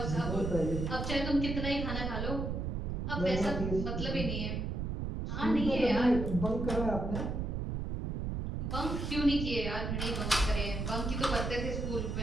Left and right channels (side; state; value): right; noise; rumble, 2 dB below the sound